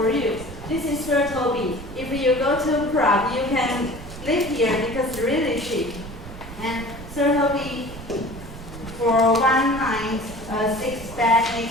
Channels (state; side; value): noise; right; rumble, 13 dB below the sound